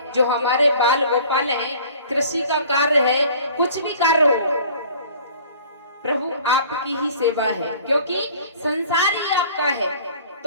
जो हमारे बाल गोपाल हैं, कृषि का कार्य है, कुछ भी कार्य हो, प्रभु आपकी ही सेवा है, क्योंकि संसार ही आपका है,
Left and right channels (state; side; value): inverted; both; correlation -0.49